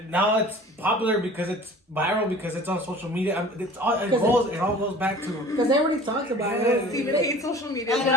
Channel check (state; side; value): normal; both; correlation 0.44